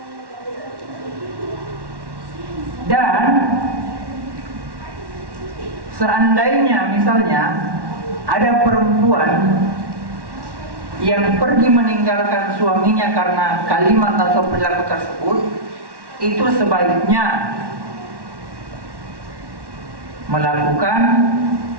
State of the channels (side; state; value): left; late; 1.1 ms